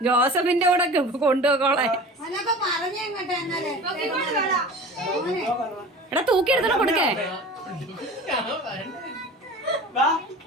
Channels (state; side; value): normal; both; correlation 0.38